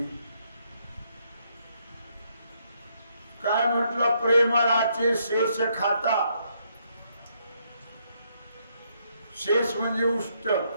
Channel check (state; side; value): inverted; both; correlation -0.74